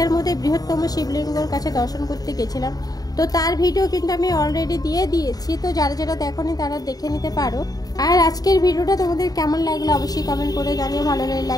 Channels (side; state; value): right; late; 0.18 ms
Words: মধ্যে বৃহত্তম শিবলিঙ্গর কাছে দর্শন করতে গেছিলাম। তো তার ভিডিও কিন্তু আমি অলরেডি দিয়ে দিয়েছি, তো যারা যারা দেখোনি তারা দেখে নিতে পারো। আর আজকের ভিডিওটা তোমাদের কেমন লাগলো অবশ্যই কমেন্ট করে জানিও, ভালো লাগলে